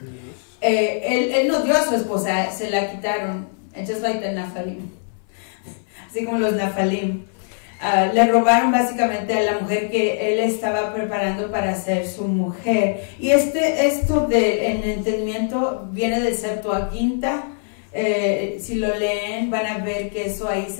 Él no dio a su esposa, se la quitaron. Just like the Naphalim. Así como los Naphalim. Le robaron básicamente a la mujer que él estaba preparando para ser su mujer. Y esto del entendimiento viene del Septuaginta. Si lo leen, van a ver que eso ahí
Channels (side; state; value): right; silent; 59 dB below the other